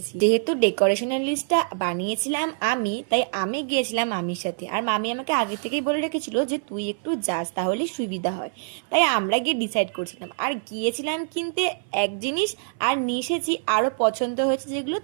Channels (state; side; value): silent; left; 58 dB below the other